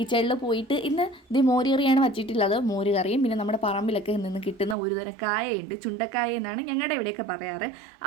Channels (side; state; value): left; drops out; at 4.8 s